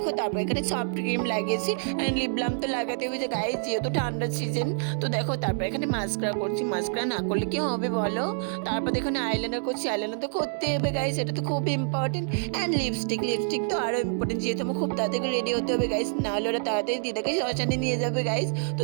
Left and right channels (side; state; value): left; silent; digital silence